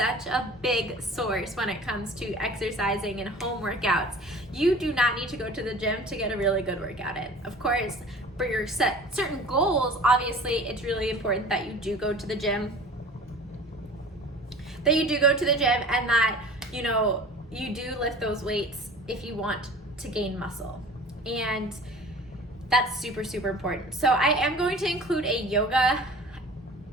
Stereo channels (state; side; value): normal; both; correlation 0.43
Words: a big source when it comes to exercising and home workouts. You do not need to go to the gym to get a really good workout in. Of course, for your certain goals, obviously it's really important that you do go to the gym, and that you do lift those weights if you want to gain muscle. And that's super, super important. So I am going to include a yoga,